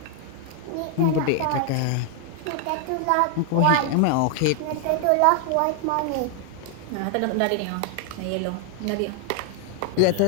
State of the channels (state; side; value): different; both; correlation 0.00